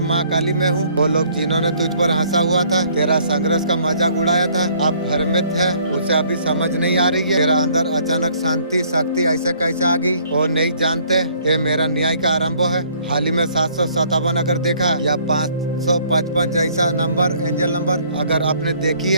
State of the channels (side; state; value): both; inverted; correlation -0.61